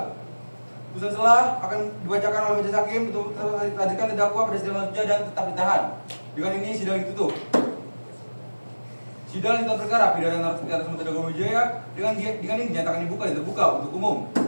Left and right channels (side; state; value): both; inverted; correlation -1.00